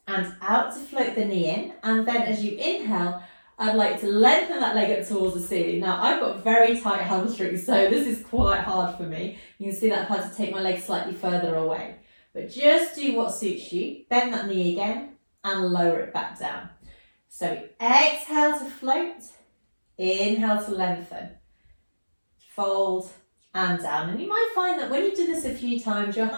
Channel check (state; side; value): inverted; both; correlation -1.00